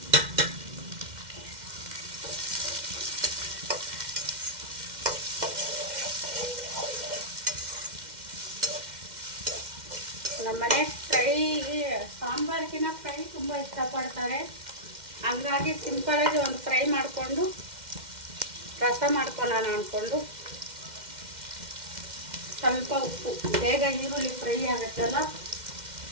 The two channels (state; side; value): late; left; 2.1 ms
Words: ನಮ್ಮನೆ ಫ್ರೈ, ಸಾಂಬಾರಿಗಿನ ಫ್ರೈ ತುಂಬ ಇಷ್ಟಪಡ್ತಾರೆ. ಹಂಗಾಗಿ ಸಿಂಪಲಾಗಿ ಒಂದು ಫ್ರೈ ಮಾಡಿಕೊಂಡು ರಸ ಮಾಡ್ಕೊಳ್ಳೋಣ ಅಂದ್ಕೊಂಡು ಸ್ವಲ್ಪ ಉಪ್ಪು, ಬೇಗ ಈರುಳ್ಳಿ ಫ್ರೈ ಆಗುತ್ತಲ್ಲ,